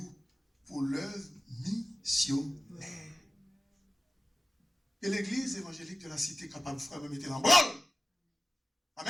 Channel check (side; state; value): both; normal; correlation 0.94